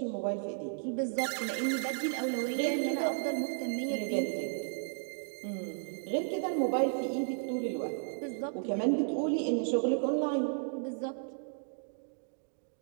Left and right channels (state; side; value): silent; left; digital silence